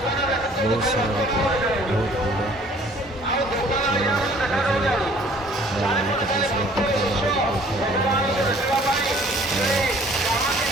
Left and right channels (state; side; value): normal; both; correlation 0.55